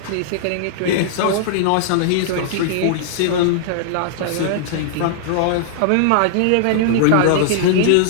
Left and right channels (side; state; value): both; different; correlation -0.01